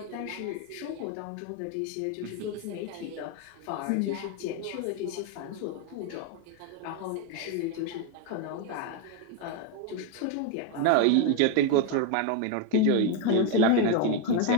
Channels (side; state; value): both; different; correlation 0.02